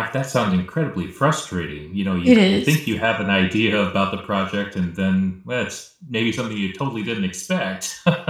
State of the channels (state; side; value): identical; both; correlation 1.00